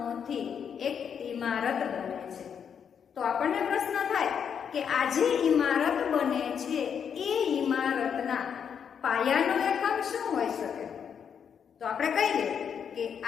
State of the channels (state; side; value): quieter; right; 7.5 dB